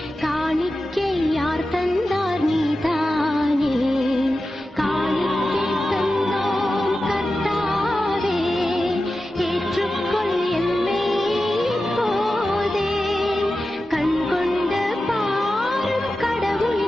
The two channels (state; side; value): normal; both; correlation 0.93